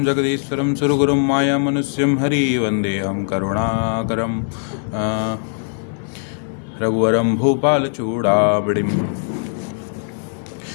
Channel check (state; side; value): silent; right; 66 dB below the other